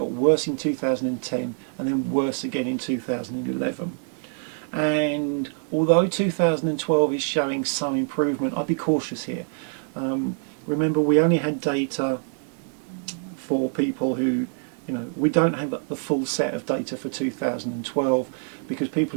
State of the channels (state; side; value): silent; left; 62 dB below the other